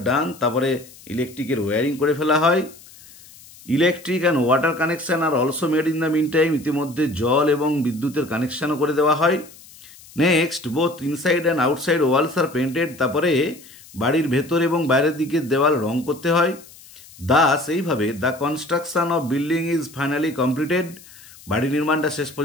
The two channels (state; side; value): noise; left; hiss, 22 dB below the sound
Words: done, তারপরে ইলেকট্রিকের ওয়ারিং করে ফেলা হয়। Electric and water connection are also made in the meantime, ইতিমধ্যে জল এবং বিদ্যুতের কানেকশনও করে দেওয়া হয়। Next, both inside and outside walls are painted, তারপরে বাড়ির ভেতর এবং বাইরের দিকের দেওয়াল রং করতে হয়। দাস এইভাবে the construction of building is finally completed, বাড়ি নির্মাণটা শেষ